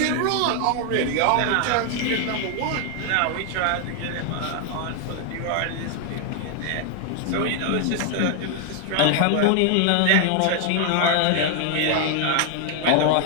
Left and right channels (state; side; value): different; both; correlation 0.00